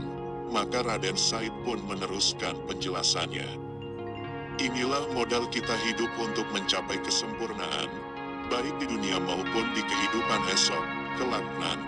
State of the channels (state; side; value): identical; both; correlation 1.00